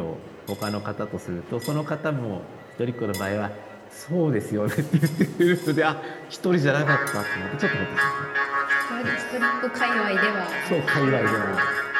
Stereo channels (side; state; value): both; identical; correlation 1.00